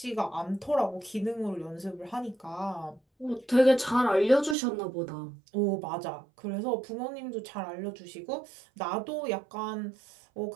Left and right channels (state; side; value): drops out; left; at 4.5 s